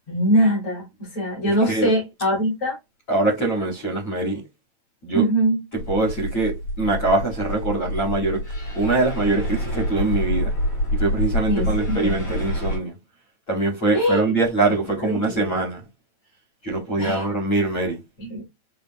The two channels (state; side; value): late; right; 8.9 ms